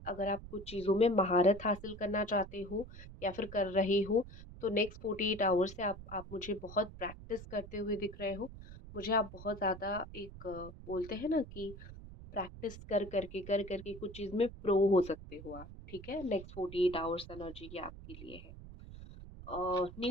अगर आप कुछ चीज़ों में महारत हासिल करना चाहते हो या फिर कर रहे हो, तो नेक्स्ट 48 आवर्स से आप मुझे बहुत प्रैक्टिस करते हुए दिख रहे हो। मुझे आप बहुत ज़्यादा एक बोलते हैं ना कि प्रैक्टिस कर करके कुछ चीज़ में प्रो हो सकते हो आप, ठीक है? नेक्स्ट 48 आवर्स एनर्जी ये आपके लिए है।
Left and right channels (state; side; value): noise; right; rumble, 14 dB below the sound